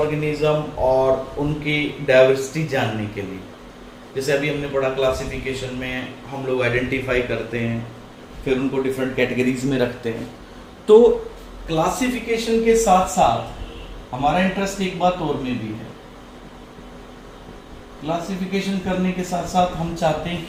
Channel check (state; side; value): identical; both; correlation 1.00